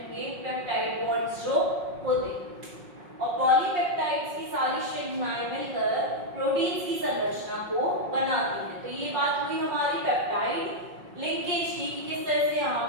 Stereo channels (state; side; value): late; left; 5.5 ms